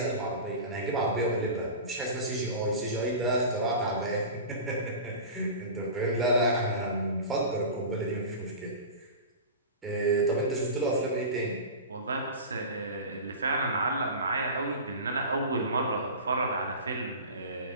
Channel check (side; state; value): both; inverted; correlation -0.31